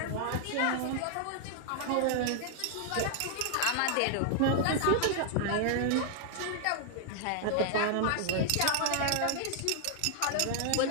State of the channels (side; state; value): both; different; correlation 0.00